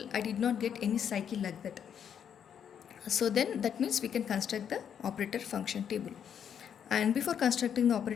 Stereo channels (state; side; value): quieter; right; 8.4 dB